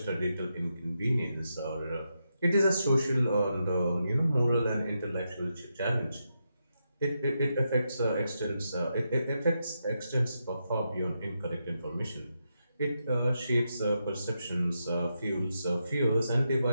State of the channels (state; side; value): inverted; both; correlation -0.85